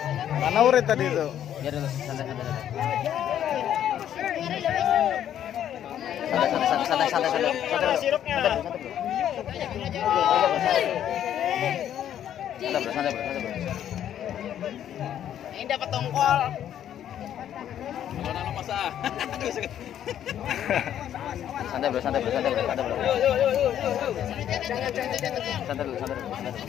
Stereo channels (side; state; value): right; quieter; 10.5 dB